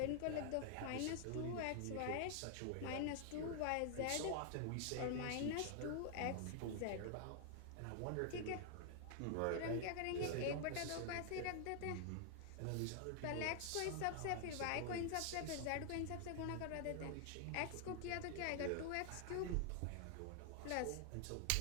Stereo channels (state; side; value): different; both; correlation 0.00